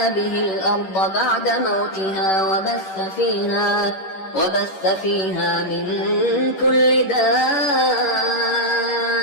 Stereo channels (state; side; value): late; right; 11 ms